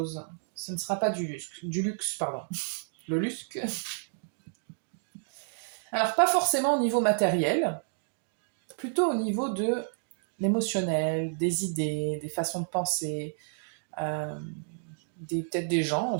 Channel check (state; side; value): silent; left; digital silence